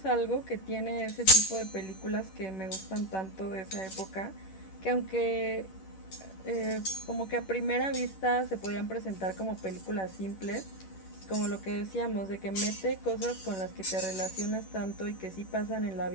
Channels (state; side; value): late; right; 10 ms